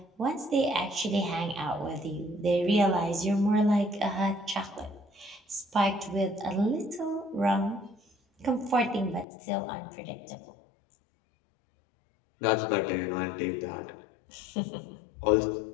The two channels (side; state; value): right; drops out; at 9.2 s